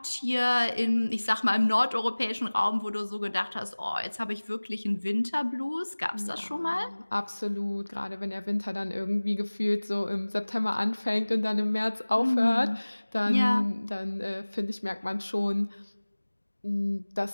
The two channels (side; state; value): both; inverted; correlation -1.00